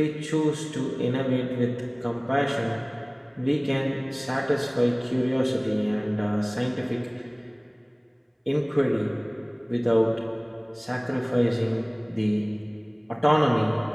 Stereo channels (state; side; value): identical; both; correlation 1.00